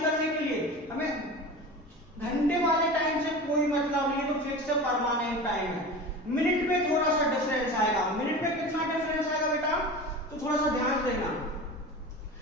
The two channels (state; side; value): normal; both; correlation 0.32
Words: करने के लिए हमें घंटे वाले टाइम से कोई मतलब नहीं, तो फिक्स परमानेंट टाइम है। मिनट में थोड़ा सा डिफरेंस आएगा। मिनट में कितना डिफरेंस आएगा बेटा? तो थोड़ा सा ध्यान देना।